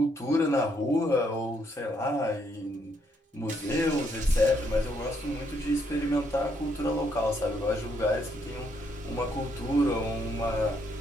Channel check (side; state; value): both; normal; correlation 0.73